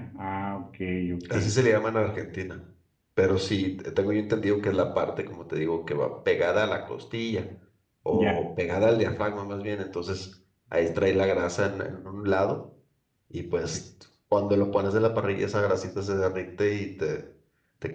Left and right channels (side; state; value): both; identical; correlation 1.00